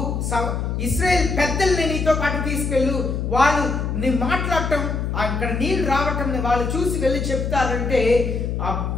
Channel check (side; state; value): left; noise; hum, 2 dB below the sound